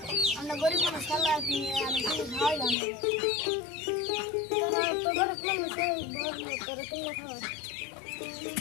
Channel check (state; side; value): drops out; right; at 2.8 s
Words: আমরা গরিব মানুষ খাল্লা কিনে আমি কিনে খাওয়াইলাম তো গরিব মানুষ তোরা কিনে খাওয়া